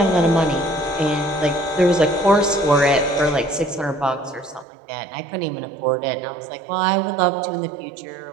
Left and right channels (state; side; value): drops out; left; at 4.7 s